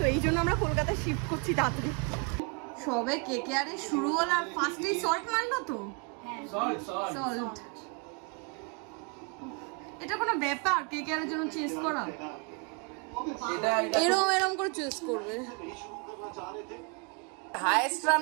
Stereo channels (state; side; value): quieter; left; 32.9 dB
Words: এই জন্য আমরা কলকাতায় শিফট করছি তাড়াতাড়ি। সবে কেকেআরে শুরু হলো আর ফার্স্টেই সল্ট মারলো তো। সল্ট এটা কোনো ব্যাপার কেকেআরের জন্য চেস করা? এরম এরম করে চেস করবে। হাইয়েস্ট